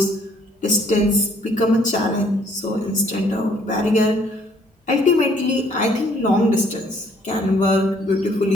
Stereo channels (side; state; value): both; normal; correlation 0.63